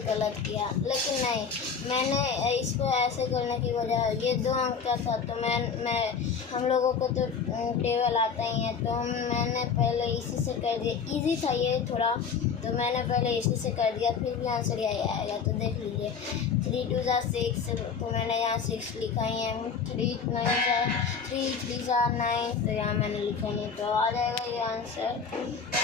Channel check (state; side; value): quieter; right; 6.1 dB